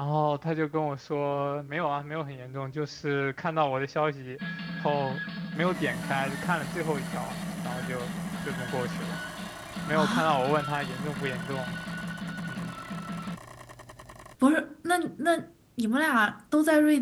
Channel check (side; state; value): both; identical; correlation 1.00